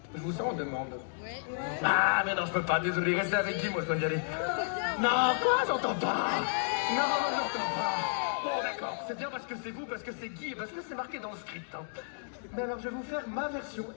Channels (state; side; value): silent; right; digital silence